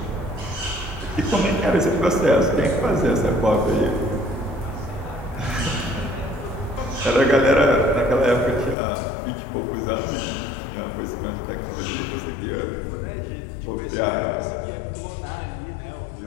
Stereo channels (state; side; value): drops out; right; at 8.8 s